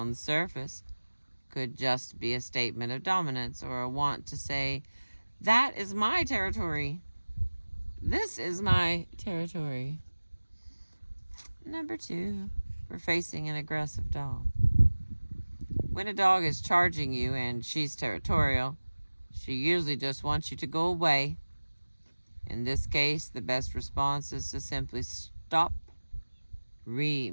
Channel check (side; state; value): both; inverted; correlation -1.00